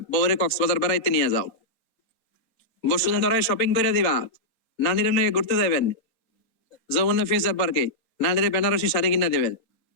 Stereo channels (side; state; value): right; late; 4.2 ms